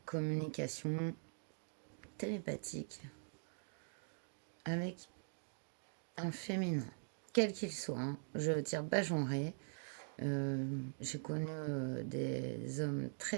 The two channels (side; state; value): left; silent; digital silence